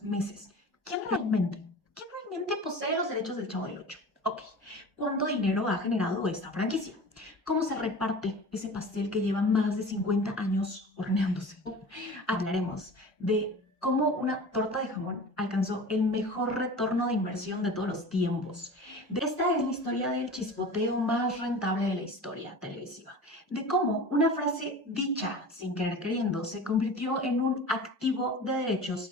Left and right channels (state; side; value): normal; both; correlation 0.37